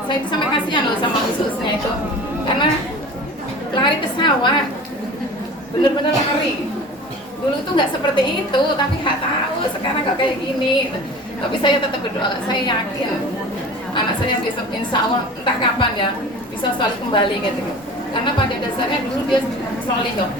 saya itu sampai kasihan loh sama ususnya itu, karena lari ke sawah, bener-bener lari. Dulu itu nggak seperti itu, tapi nggak tahu sekarang kok kayak gini. Tapi saya tetap berdoa, saya yakin anak saya besok insya Allah entah kapan ya bisa soleh kembali gitu. Karena pada dasarnya dulu dia soleh kok.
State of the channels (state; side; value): normal; both; correlation 0.39